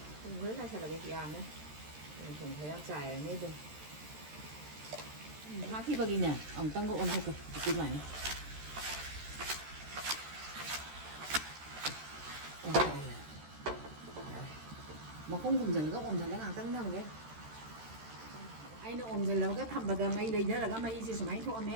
thùng với hai là cái yam đấy thùng thấy ăn xài ở đây hai khi bao nè ông tăng độ ăn thôi cái này mà không cùng dần các ôm dần các hàng tăng thằng ghé anh nó ôm dần là cái thầm bật máy lấy đó là cái máy gì máy thôi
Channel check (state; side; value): late; left; 13 ms